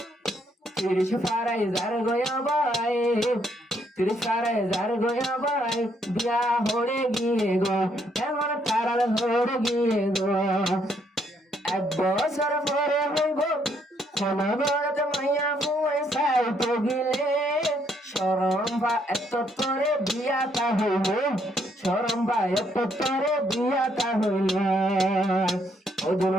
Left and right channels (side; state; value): both; normal; correlation 0.71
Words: তিরিশ ফারাই জার গয়া বাই তিরিশ ফারাই জার গয়া বাই বিয়া হড়ে গিয়ে গো এখন তারাল হড়ে গিয়ে গো এক বছর পরে হইব ক্ষমা বড় মাইয়া ফুয়াই সাইতে গিলে শরম বা এত তোরে বিয়াটা হইল শরম বা এত তোরে বিয়াটা হইল ওদের